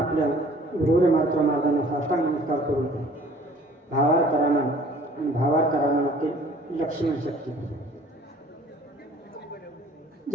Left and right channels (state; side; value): normal; both; correlation 0.53